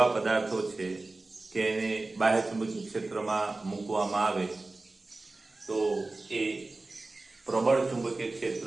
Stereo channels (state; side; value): quieter; left; 3.2 dB